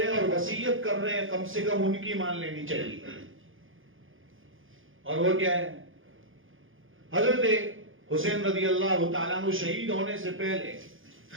ہیں اور وصیت کر رہے ہیں کم سے کم ان کی مان لینی چاہیے. اور وہ کیا ہے؟ حضرت حسین رضی اللہ تعالیٰ عنہ شہید ہونے سے پہلے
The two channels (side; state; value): left; late; 0.58 ms